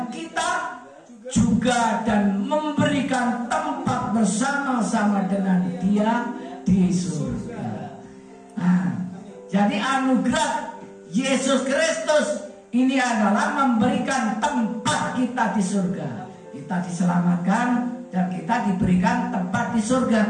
kita juga dan memberikan tempat bersama-sama dengan Dia di surga. Nah, jadi anugerah Yesus Kristus ini adalah memberikan tempat kita di surga. Kita diselamatkan dan kita diberikan tempat di surga.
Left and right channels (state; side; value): identical; both; correlation 1.00